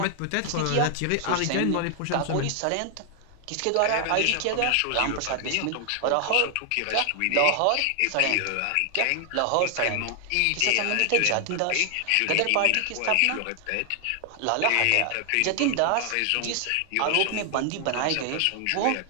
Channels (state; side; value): different; both; correlation 0.00